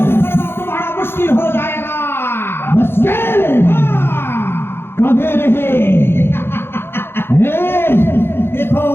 तुम्हारा मुश्किल हो जाएगा। मुश्किल कभी नहीं। देखो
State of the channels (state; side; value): late; right; 0.11 ms